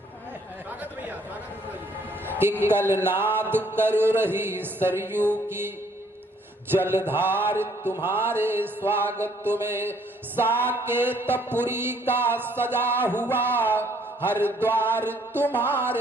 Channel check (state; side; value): normal; both; correlation 0.64